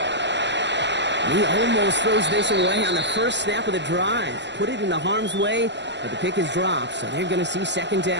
He almost throws this away on the first snap of the drive. Put it into harm's way, but the pick is dropped, so they're going to see 2nd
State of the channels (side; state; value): left; late; 0.52 ms